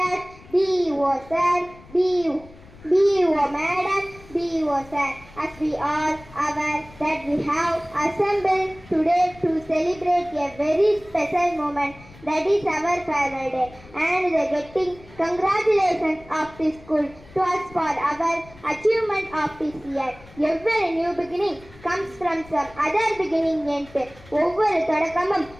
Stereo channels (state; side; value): noise; left; rumble, 22 dB below the sound